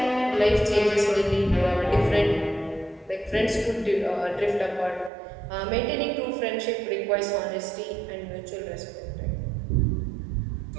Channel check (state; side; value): drops out; left; at 5.1 s